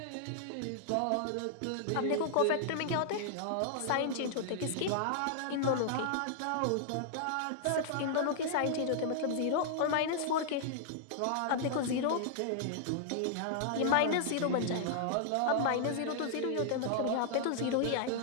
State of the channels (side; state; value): both; different; correlation -0.01